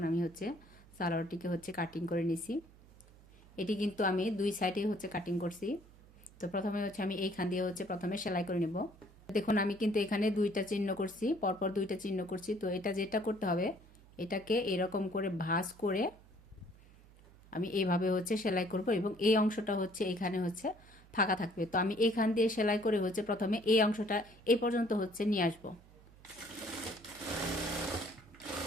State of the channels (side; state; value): right; noise; hum, 24 dB below the sound